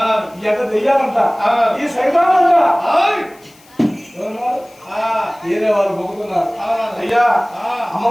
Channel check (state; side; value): noise; left; hiss, 28 dB below the sound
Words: ఈ అంట దెయ్యాలంట, ఈ సైతానంట వేరే వాళ్ళు మొక్కుతున్నారు. అయ్యా